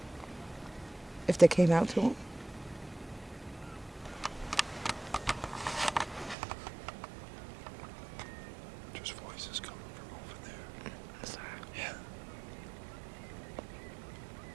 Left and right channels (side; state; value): left; drops out; at 6.4 s